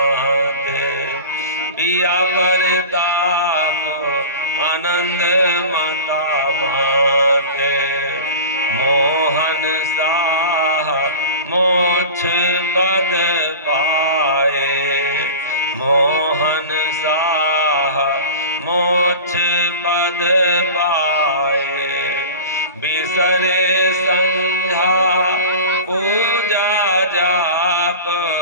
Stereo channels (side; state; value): both; inverted; correlation -0.33